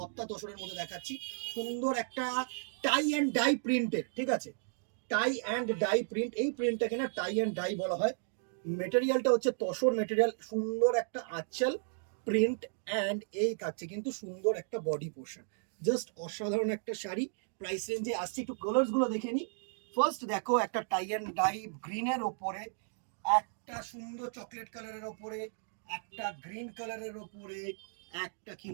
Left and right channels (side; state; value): left; silent; digital silence